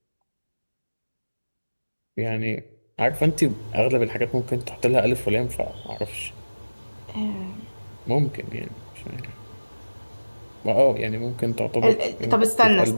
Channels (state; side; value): inverted; both; correlation -1.00